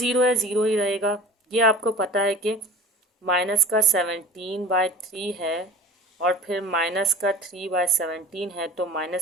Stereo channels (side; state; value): both; normal; correlation 0.40